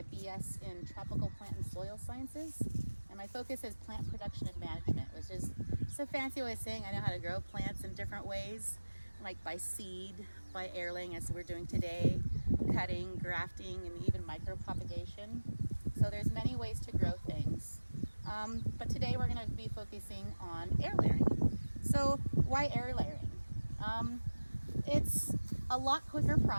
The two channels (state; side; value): inverted; both; correlation -1.00